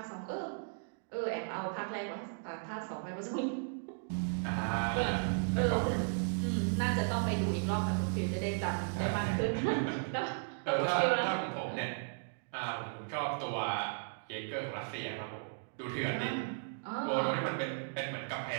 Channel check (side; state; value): left; silent; digital silence